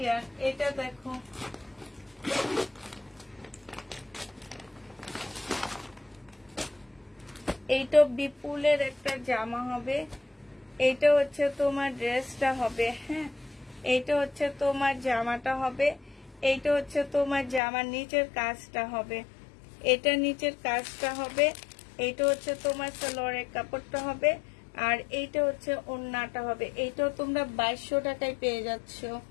এটা দেখো, এইটা বিপুলের একটা জামা হবে। এইটা হচ্ছে তোমার ড্রেসটা হবে। হ্যাঁ, এইটা হচ্ছে তোমার জামাটা হবে। এইটা হচ্ছে তোমার জামার নিচের কাজটা হবে। এটা নিচের কাজটা হবে। এইটা হচ্ছে তোমার সালোয়ারের কাপড়টা হবে। আর এইটা হচ্ছে ওড়নাটা হবে। এইটাও তোমরা 2200 টাকায় পেয়ে যাচ্ছ।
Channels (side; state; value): right; drops out; at 17.6 s